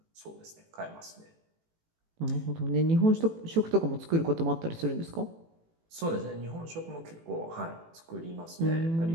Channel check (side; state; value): left; late; 18 ms